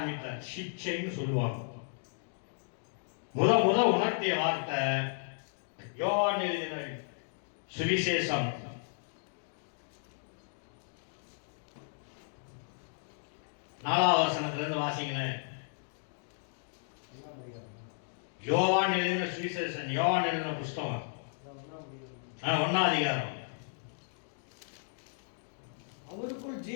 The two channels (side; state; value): right; silent; digital silence